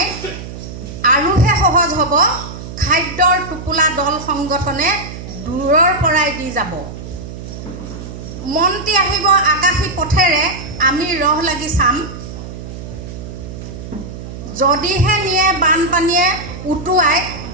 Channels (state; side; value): noise; right; hum, 11 dB below the sound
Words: আৰুহে সহজ হ'ব, খাদ্যৰ টোপোলা দল সংগঠনে দূৰৰ পৰাই দি যাব। মন্ত্ৰী আহিব আকাশী পথেৰে, আমি ৰহ লাগি চাম, যদিহে নিয়ে বানপানীয়ে উটুৱাই,